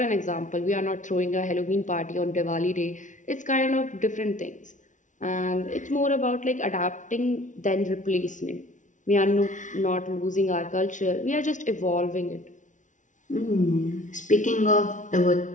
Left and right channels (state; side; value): late; right; 0.37 ms